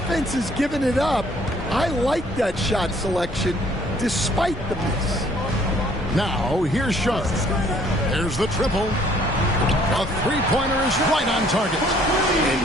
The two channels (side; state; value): both; normal; correlation 0.60